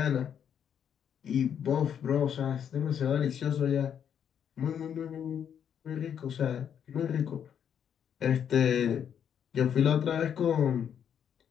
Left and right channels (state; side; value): quieter; right; 8.5 dB